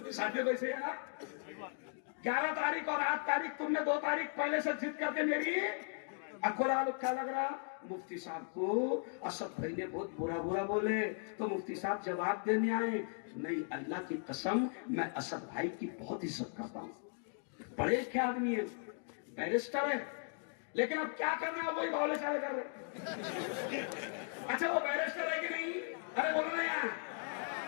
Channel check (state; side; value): silent; right; 53 dB below the other